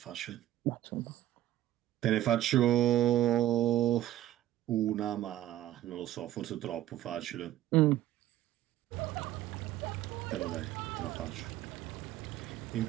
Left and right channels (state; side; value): quieter; left; 13.5 dB